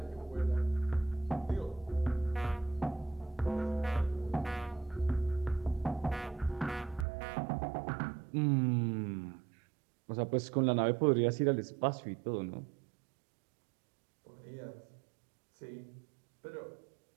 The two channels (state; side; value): drops out; left; at 7.1 s